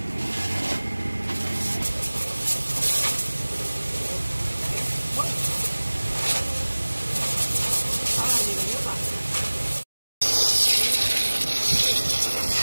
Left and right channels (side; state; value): both; inverted; correlation -1.00